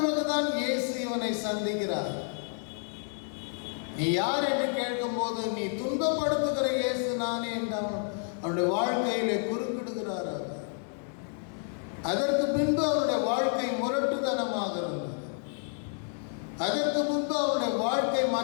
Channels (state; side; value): silent; right; 58 dB below the other